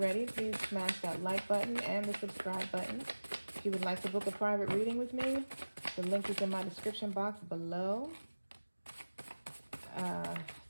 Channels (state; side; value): inverted; both; correlation -1.00